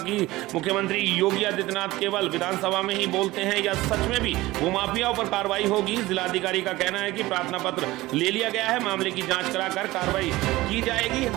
मुख्यमंत्री योगी आदित्यनाथ केवल विधानसभा में ही बोलते हैं या सच में भी भूमाफियाओं पर कार्रवाई होगी। जिलाधिकारी का कहना है कि प्रार्थना पत्र ले लिया गया है, मामले की जांच कराकर कार्रवाई की जाएगी।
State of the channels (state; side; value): quieter; left; 18.6 dB